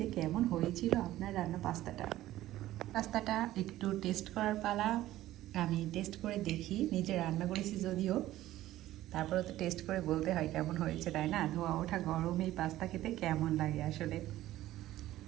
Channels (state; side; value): quieter; left; 14.8 dB